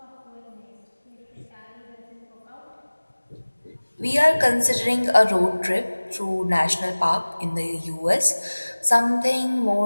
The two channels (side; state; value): both; inverted; correlation -1.00